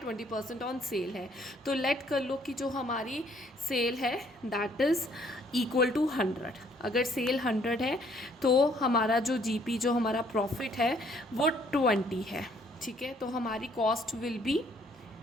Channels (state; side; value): normal; both; correlation 0.64